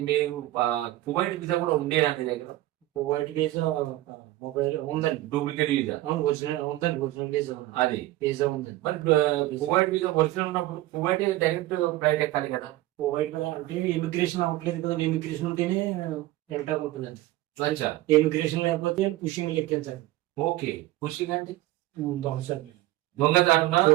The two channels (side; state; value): left; quieter; 16.6 dB